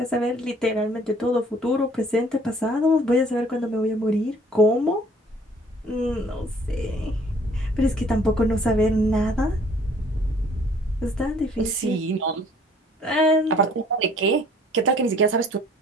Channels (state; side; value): normal; both; correlation 0.57